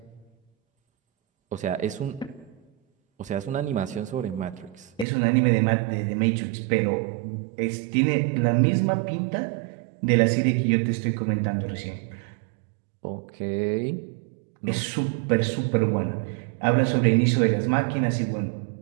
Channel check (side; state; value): left; drops out; at 5.1 s